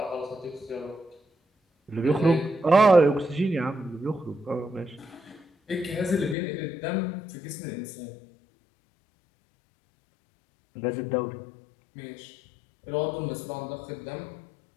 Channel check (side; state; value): right; drops out; at 6.4 s